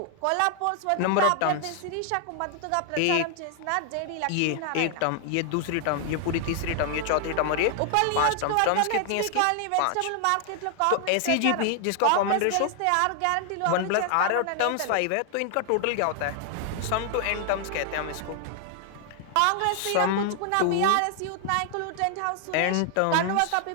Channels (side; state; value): both; different; correlation 0.00